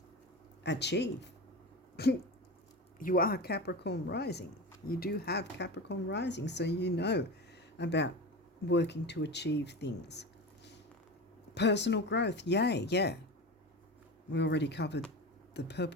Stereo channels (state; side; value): normal; both; correlation 0.26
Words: You are Capricorn rising. You do have Capricorn rising, so you know about working to achieve things. Personal growth, yay, yeah. We already covered the